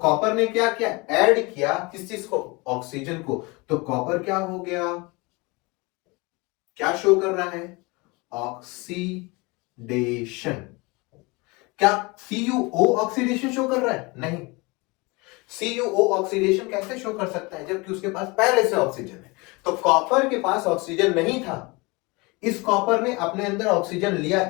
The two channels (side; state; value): right; quieter; 26.1 dB